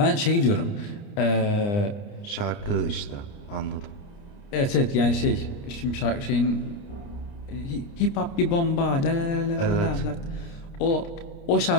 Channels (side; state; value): right; late; 29 ms